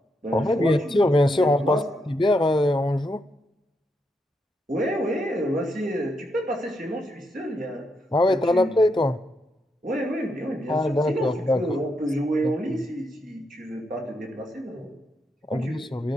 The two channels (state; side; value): normal; both; correlation 0.80